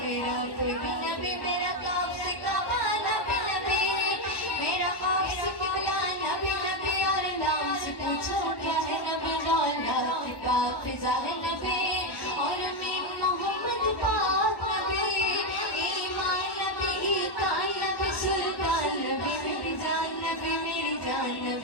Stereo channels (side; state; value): right; late; 1.1 ms